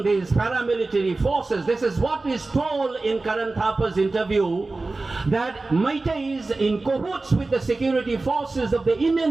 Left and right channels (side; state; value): left; quieter; 3.4 dB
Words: these paramilitary forces. This is what is told in Karan Thapa's interview, that Meiteis in cahoots with the security forces of the